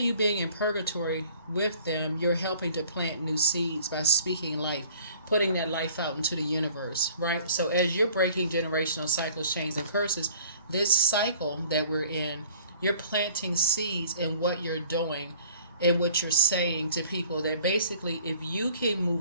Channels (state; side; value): inverted; both; correlation -0.52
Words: you being in purgatory with them, you're helping to plant new seeds by speaking life, putting that life out into the universe, right? So as you're breaking generational cycles, chains, and curses, this cycle that we're in, you're planting seeds in what you're doing and what you're saying to people, that basically if you can